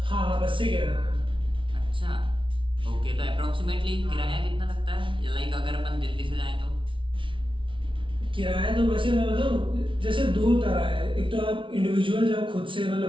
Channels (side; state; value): left; late; 0.25 ms